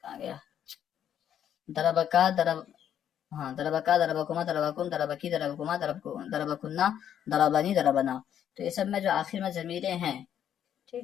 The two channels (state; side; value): quieter; right; 9.7 dB